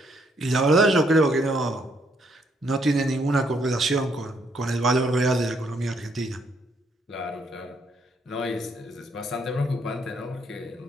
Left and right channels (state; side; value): normal; both; correlation 0.72